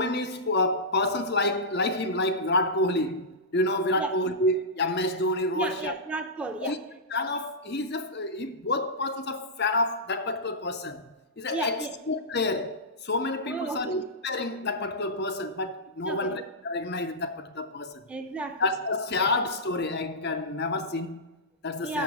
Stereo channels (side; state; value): both; normal; correlation -0.13